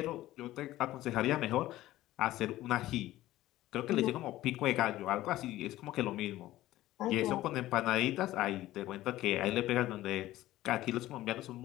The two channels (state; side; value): quieter; right; 15.6 dB